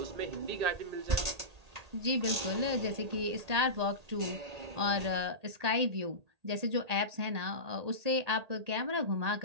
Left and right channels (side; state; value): left; late; 1.8 ms